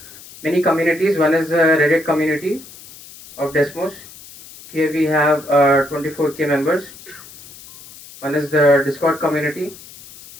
many communities. One is the Reddit community of Desmos. Here we have 24K members. One is the Discord community.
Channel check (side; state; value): left; noise; hiss, 19 dB below the sound